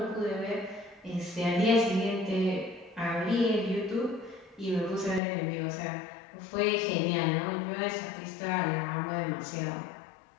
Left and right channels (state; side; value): drops out; right; at 5.2 s